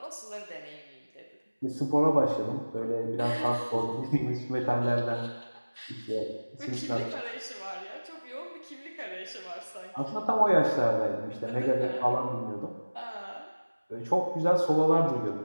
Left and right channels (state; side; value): inverted; both; correlation -1.00